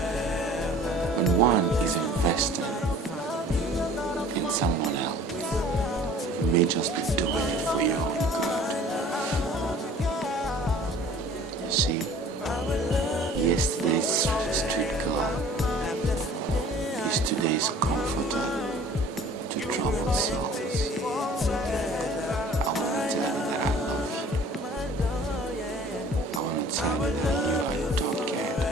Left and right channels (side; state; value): both; normal; correlation 0.49